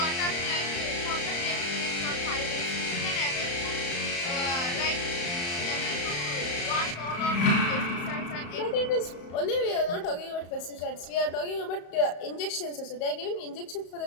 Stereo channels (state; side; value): late; right; 34 ms